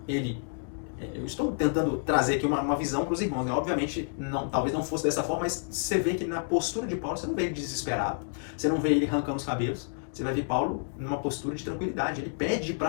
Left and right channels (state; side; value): silent; right; digital silence